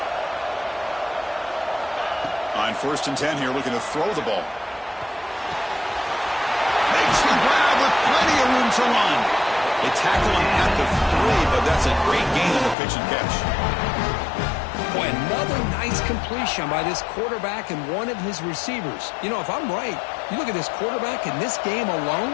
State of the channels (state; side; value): drops out; right; at 12.8 s